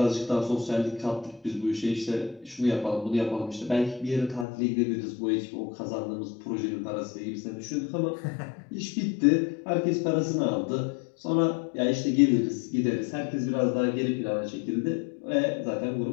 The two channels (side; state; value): right; drops out; at 4.5 s